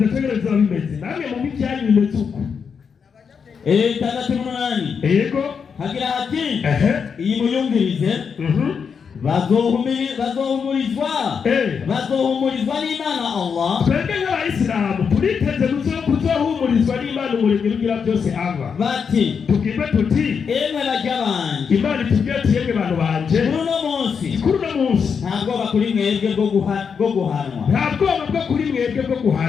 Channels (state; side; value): quieter; right; 6.3 dB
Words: tegereza bimeze namwe mu mijyanyu bimeze uko 6:8 yego hagira hati iyi muyumvirize bazohumurizwa n'Imana Allah twebwe nk'Abayisilamu turiteze kuzohumurizwa n'Imana umuremyi ugira byose ava bati tubwirwe tuti emwe bajya banje Imana itubwira ati yemwe bantu banje kuri uno munsi nta bwoba kuri mwebwe bwo guhanwa nta bwoba bwo kuri mwebwe bwo